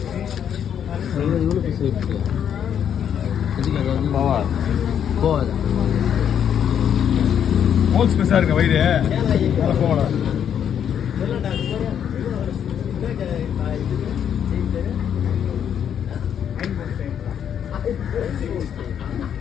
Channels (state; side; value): quieter; right; 8.8 dB